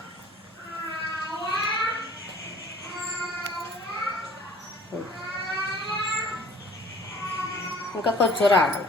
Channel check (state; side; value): normal; both; correlation 0.50